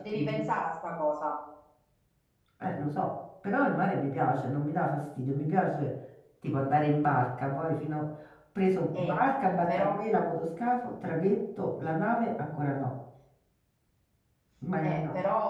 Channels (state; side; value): identical; both; correlation 1.00